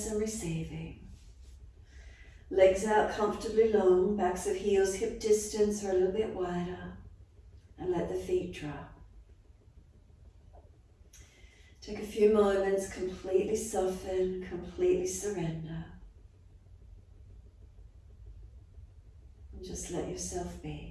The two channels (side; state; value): both; identical; correlation 1.00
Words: and receiving. Legs out comfortably long, backs of heels hip distance or a little bit wider, and let the feet drop. Take a few moments, completely soften, completely surrender. And just let yourself